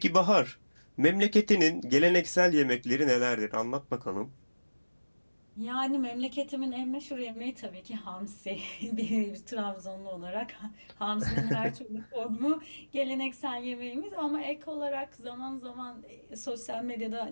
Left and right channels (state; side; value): inverted; both; correlation -1.00